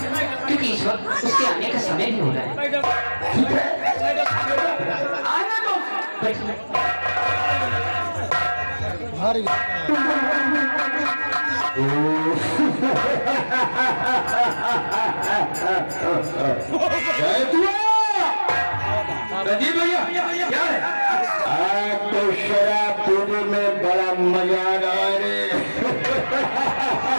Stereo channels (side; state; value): both; inverted; correlation -1.00